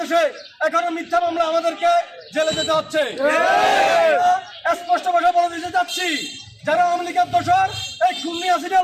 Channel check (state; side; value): identical; both; correlation 1.00